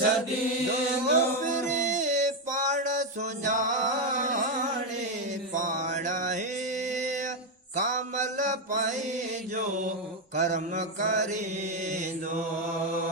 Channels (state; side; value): normal; both; correlation 0.06